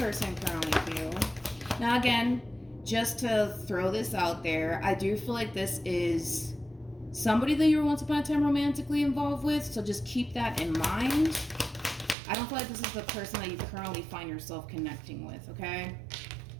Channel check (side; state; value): left; drops out; at 12.2 s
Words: currently feel? Now again, just to throw this out there, I do feel like this is somebody that you were once upon a time romantically involved with, so just keep that in mind. I don't feel like this is the person that you currently find yourself connecting with, okay?